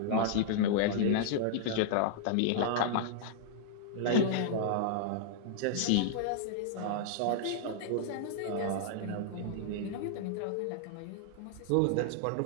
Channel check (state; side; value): different; both; correlation -0.01